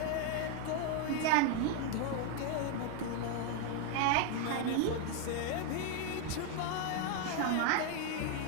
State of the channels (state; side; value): different; both; correlation 0.01